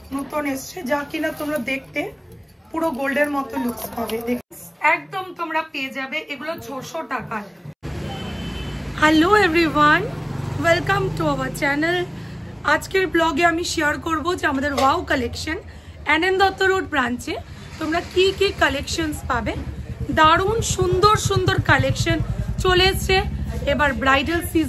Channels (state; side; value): identical; both; correlation 1.00